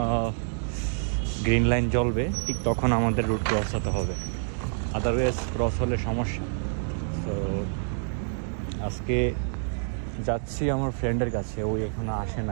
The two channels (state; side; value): silent; left; digital silence